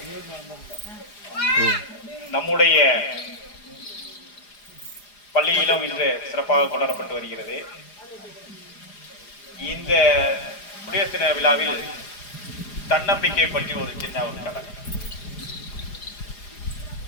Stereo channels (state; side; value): late; right; 4.9 ms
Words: நம்முடைய பள்ளியிலும் இன்று சிறப்பாக கொண்டாடப்பட்டு வருகிறது. இந்த குடியரசு தின விழாவில் தன்னம்பிக்கை பற்றி ஒரு சின்ன ஒரு கதை.